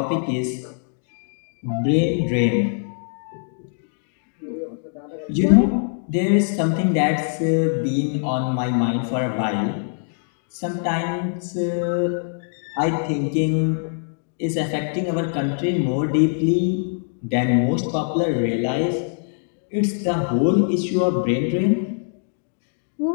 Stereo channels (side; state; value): right; silent; digital silence